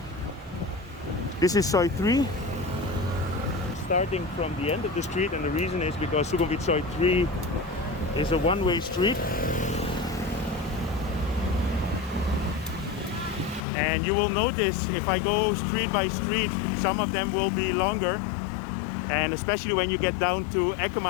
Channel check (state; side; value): drops out; right; at 13.7 s